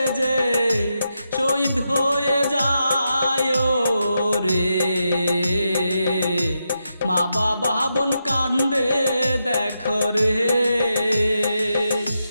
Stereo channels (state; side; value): inverted; both; correlation -0.85